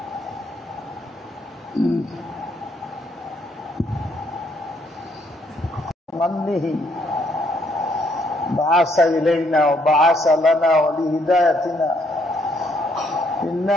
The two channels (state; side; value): normal; both; correlation 0.70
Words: بعث إلينا وبعث لنا ولهدايتنا